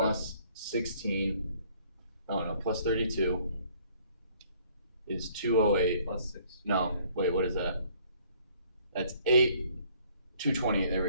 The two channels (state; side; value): inverted; both; correlation -0.61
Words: 16. Oh no, plus 32 is 208. Plus 6. No, wait, what is that? That's 228. There